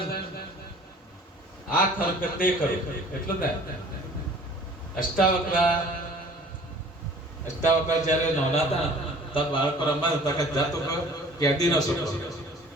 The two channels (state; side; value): normal; both; correlation 0.49